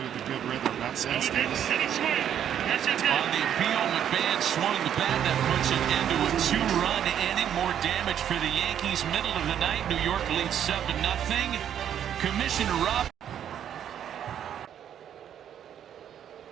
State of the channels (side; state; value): left; quieter; 9.6 dB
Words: the good rhythm. That's instinct. On the appeal, McMahon swung the bat. That puts it into a 2-run inning. More damage for the Yankees. Middle of the night, New York leads 7-0. Commissioner Rob.